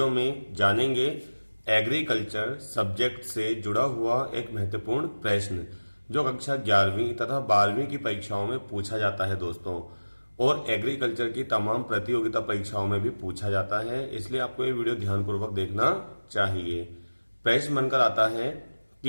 में जानेंगे एग्रीकल्चर सब्जेक्ट से जुड़ा हुआ एक महत्वपूर्ण प्रश्न जो कक्षा 11वीं तथा 12वीं की परीक्षाओं में पूछा जाता है दोस्तों, और एग्रीकल्चर की तमाम प्रतियोगिता परीक्षाओं में भी पूछा जाता है। इसलिए आपको ये वीडियो ध्यानपूर्वक देखना चाहिए। प्रश्न बनकर आता है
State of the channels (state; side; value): inverted; both; correlation -1.00